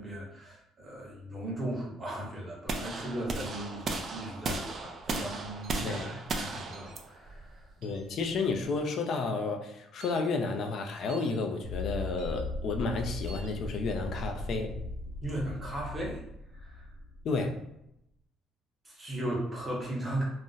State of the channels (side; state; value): both; normal; correlation 0.64